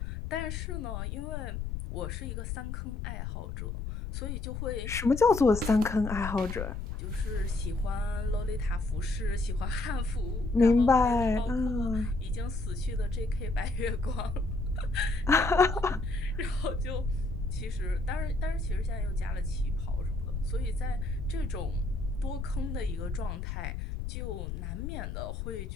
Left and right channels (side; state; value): left; noise; rumble, 5 dB below the sound